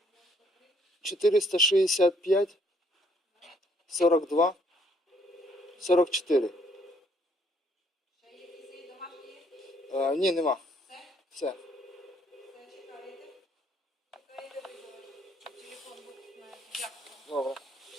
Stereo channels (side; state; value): both; normal; correlation 0.67